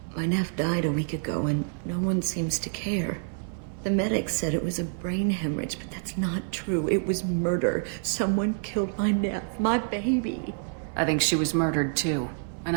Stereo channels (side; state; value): left; silent; 60 dB below the other